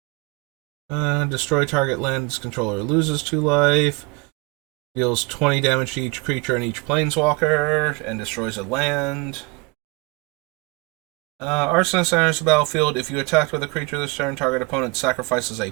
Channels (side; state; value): left; quieter; 27.7 dB